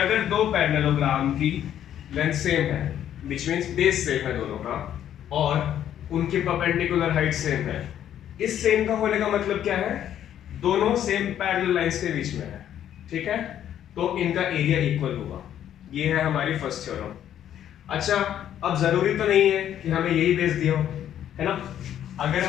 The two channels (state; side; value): quieter; right; 10.6 dB